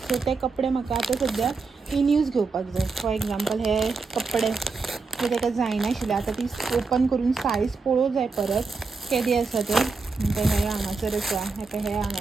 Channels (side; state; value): left; quieter; 4.4 dB